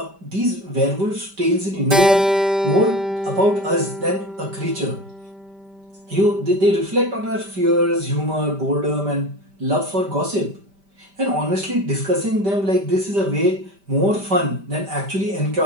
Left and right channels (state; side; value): late; left; 5.1 ms